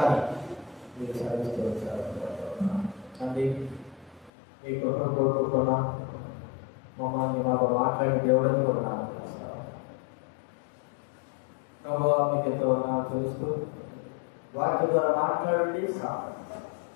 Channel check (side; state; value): right; drops out; at 4.3 s